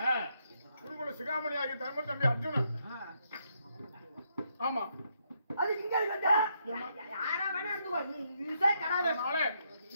குருகுல சிகாமணி ஆகிய தர்ம தம்பி அர்ஜுனன். ஆமா. அது இங்க இருக்கு. யாரா வேணா இருந்துக்கோ. நீ யூஸே கடாவே. அதனால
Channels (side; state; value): both; inverted; correlation -0.77